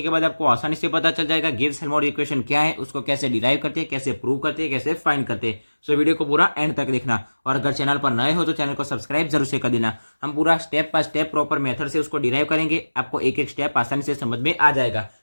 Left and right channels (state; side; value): inverted; both; correlation -1.00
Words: के बाद आपको आसानी से पता चल जाएगा गिब्स हेल्महोल्ट्ज इक्वेशन क्या है, उसको कैसे डिराइव करते हैं, कैसे प्रूव करते हैं, कैसे फाइंड करते हैं। सो वीडियो को पूरा एंड तक देखना और अगर चैनल पर नए हो तो चैनल को सब्सक्राइब जरूर से कर देना। हम पूरा step by step proper method से उसको डिराइव करेंगे, आपको एक एक स्टेप आसानी से समझ में आ जाएगा।